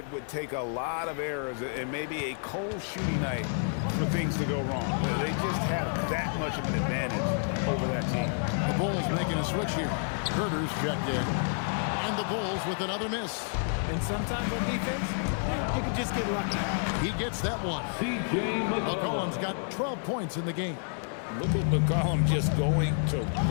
would take a lot of errors and maybe a cold shooting night for things to go wrong. They just have that much of an advantage over that team. The Bulls making a switch here. Herter's checked in. And the Bulls with another miss. And sometimes on defense, you can just get lucky. He gets that one. McCollum's got 12 points in the game. Look at McCollum just going to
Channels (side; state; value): right; silent; 58 dB below the other